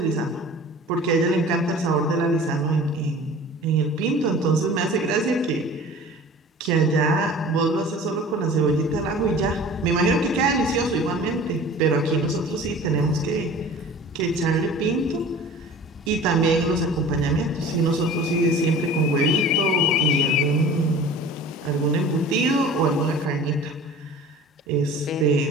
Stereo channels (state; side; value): normal; both; correlation 0.42